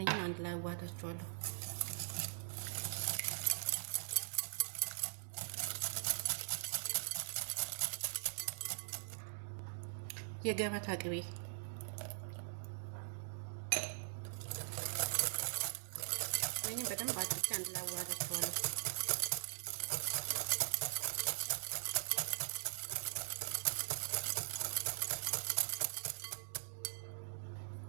አንድ ላይ አዋህዳቸዋለሁ። የገበታ ቅቤ ወይንም በደንብ አድርጌ አንድ ላይ አዋህዳቸዋለሁ።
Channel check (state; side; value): silent; left; digital silence